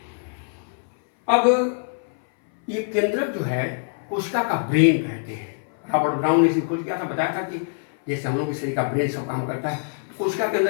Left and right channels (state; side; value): silent; right; 61 dB below the other